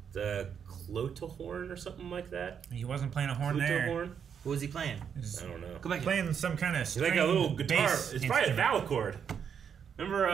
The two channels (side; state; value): left; quieter; 7.6 dB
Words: The Clotahorn or something like that. He wasn't playing a horn there. Flutahorn? What was he playing? He's I don't know. Go back. playing some kind of It's like a little guitar. It's probably a vowel. vowel